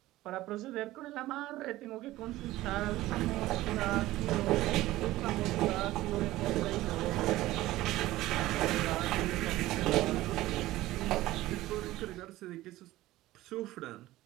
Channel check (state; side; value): quieter; left; 16.6 dB